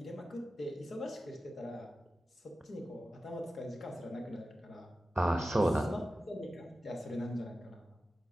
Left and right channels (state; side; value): normal; both; correlation 0.93